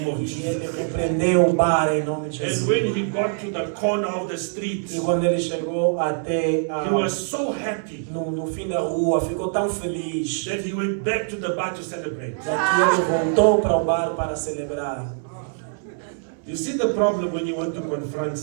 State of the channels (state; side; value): silent; left; 63 dB below the other